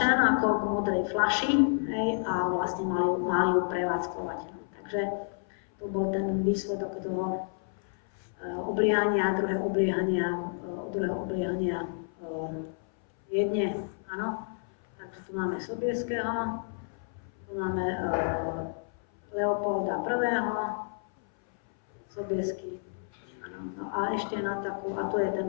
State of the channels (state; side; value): silent; right; 58 dB below the other